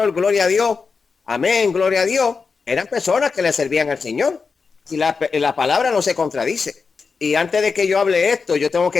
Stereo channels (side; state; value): right; quieter; 5.0 dB